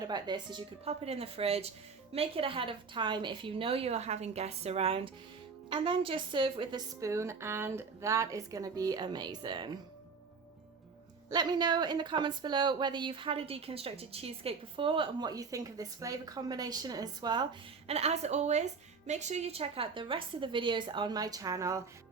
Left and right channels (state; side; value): quieter; left; 5.1 dB